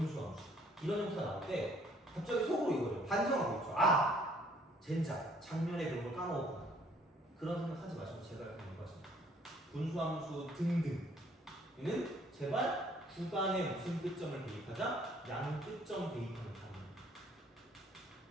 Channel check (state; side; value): normal; both; correlation 0.61